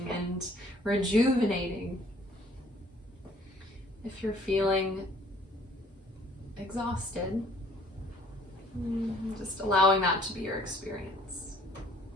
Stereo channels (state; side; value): normal; both; correlation 0.58